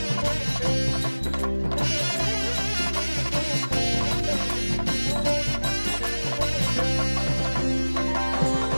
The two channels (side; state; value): both; inverted; correlation -1.00